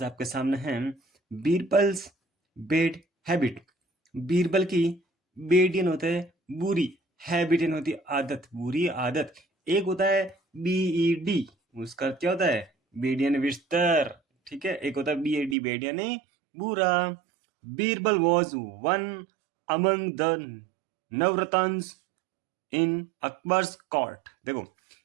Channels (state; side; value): drops out; left; at 15.6 s